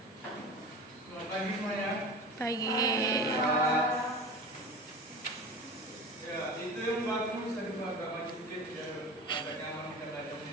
Selamat pagi semuanya. Pagi. Ya, itu yang bagus saya juga agak maju sedikit biar agak nyaman kita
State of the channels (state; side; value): normal; both; correlation 0.34